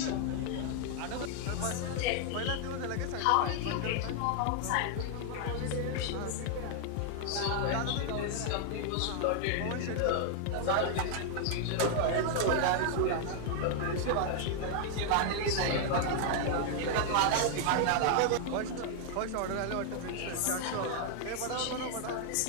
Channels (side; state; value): both; different; correlation 0.00